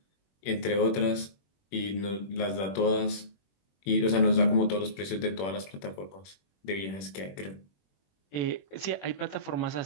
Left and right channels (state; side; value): late; right; 21 ms